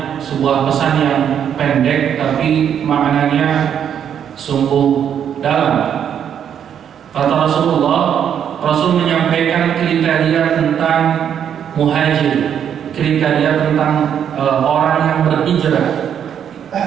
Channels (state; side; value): quieter; left; 8.8 dB